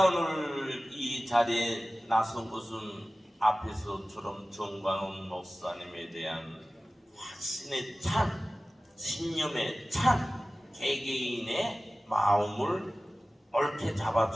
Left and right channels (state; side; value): normal; both; correlation 0.96